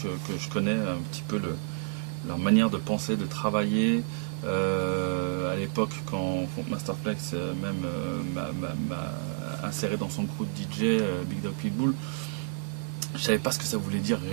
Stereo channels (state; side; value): silent; left; digital silence